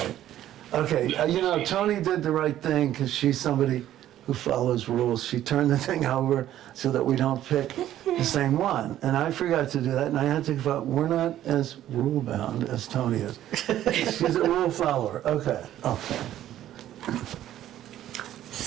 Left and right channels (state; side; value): quieter; left; 12.5 dB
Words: Okay, Tony did the right thing because she's somebody who follows rules. She turned the thing over so that we don't pick the same one. And I forgot to do that. Niantic thought, we're not as rule-bound as Tony is. She's a rule follower. Okay.